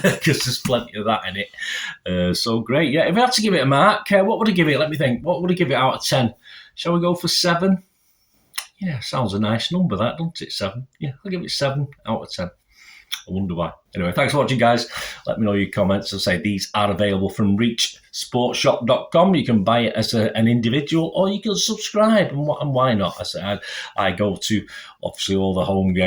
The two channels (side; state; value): both; identical; correlation 1.00